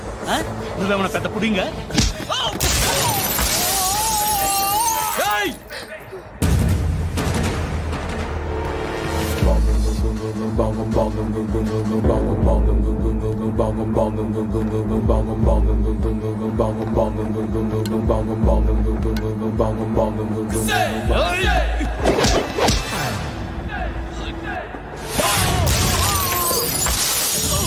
నువ్వేమన్నా పెద్ద పుడింగా?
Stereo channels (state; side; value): identical; both; correlation 1.00